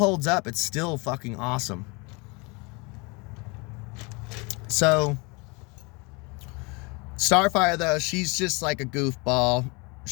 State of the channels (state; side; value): quieter; right; 28.6 dB